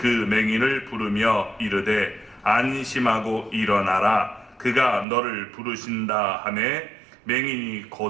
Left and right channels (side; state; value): left; drops out; at 5.1 s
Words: 맹인을 부르며 이르되 안심하고 일어나라 그가 너를 부르신다 하매 맹인이